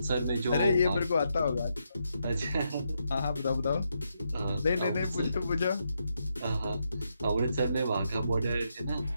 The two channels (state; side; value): inverted; both; correlation -0.81